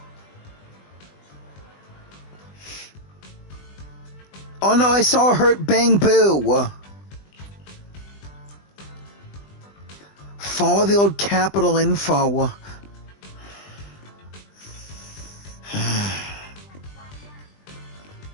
Oh no, I saw Hurt Bang Boo. Follow the old capital info.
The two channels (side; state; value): right; late; 20 ms